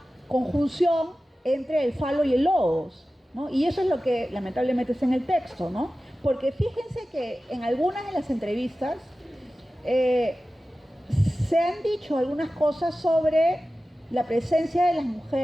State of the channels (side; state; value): both; normal; correlation 0.95